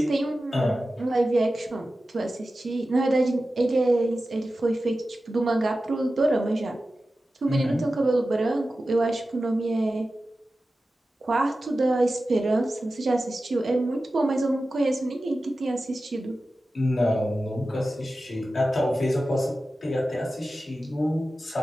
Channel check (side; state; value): both; normal; correlation 0.94